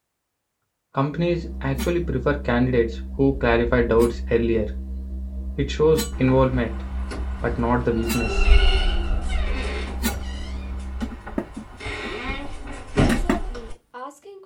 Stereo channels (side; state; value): both; identical; correlation 1.00